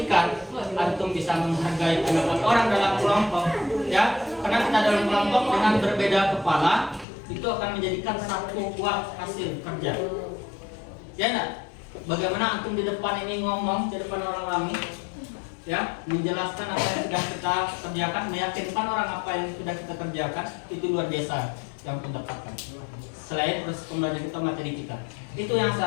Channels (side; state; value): right; drops out; at 7.1 s